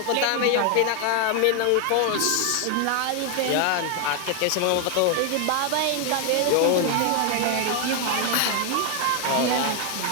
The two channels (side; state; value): both; different; correlation 0.01